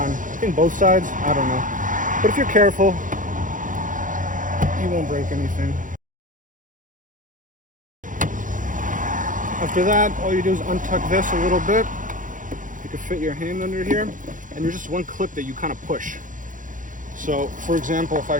I think both sides, I don't know. But if you're careful, you won't break anything. After that, all you do is untuck this a little bit. You can fit your hand under here. And there's just one clip that you kind of push. So, for example, if I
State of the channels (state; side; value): late; left; 0.38 ms